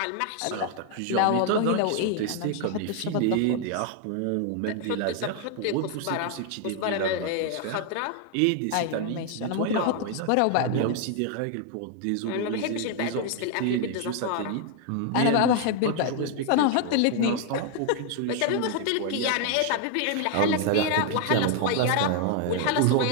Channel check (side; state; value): both; different; correlation 0.00